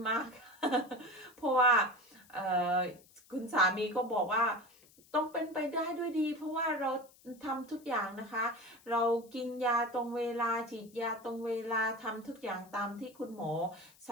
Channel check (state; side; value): noise; left; hiss, 27 dB below the sound